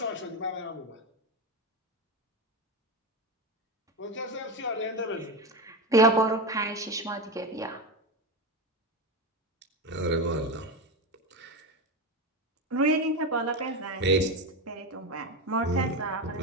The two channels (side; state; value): both; normal; correlation 0.17